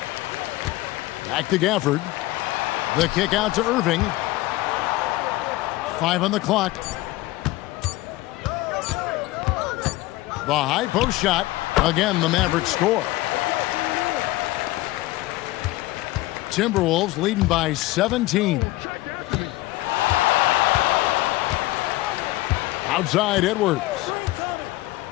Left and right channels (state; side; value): quieter; right; 18.4 dB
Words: Back to Gafford. The kick out to Irving. 5 on the clock. The high post shot. Again, the Mavericks score. Timberwolves leading by 17. Outside Edwards.